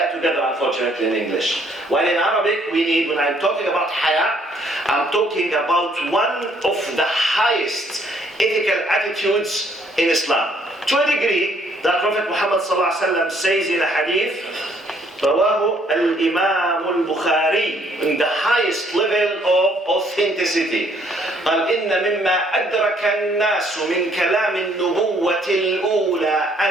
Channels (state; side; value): normal; both; correlation 0.65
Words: together, unfortunately, in English. While in Arabic, we need, when I'm talking about haya, I'm talking about one of the highest ethical attitudes in Islam. To a degree, that Prophet Muhammad ﷺ says in a hadith, رواه الإمام البخاري, in the highest level of authenticity. قال إن مما أدرك الناس من كلام النبوة الأولى